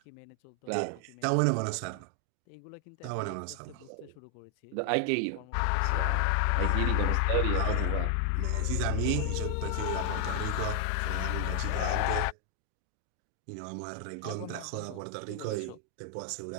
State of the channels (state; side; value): different; both; correlation 0.00